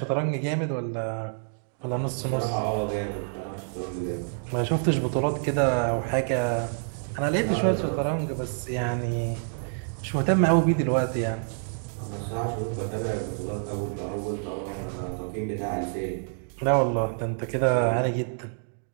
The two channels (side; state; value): left; silent; digital silence